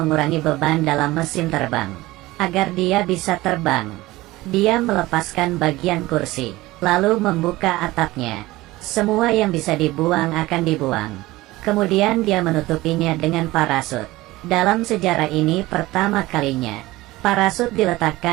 beban dalam mesin terbang agar dia bisa terbang. Dia melepaskan bagian kursi, lalu membuka atapnya. Semua yang bisa dibuang akan dibuang. Kemudian dia menutupinya dengan parasut. Dalam sejarah ini pertama kalinya, parasut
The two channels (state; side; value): quieter; left; 18.8 dB